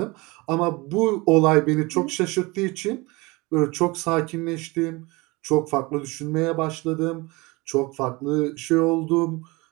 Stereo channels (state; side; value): quieter; left; 24.1 dB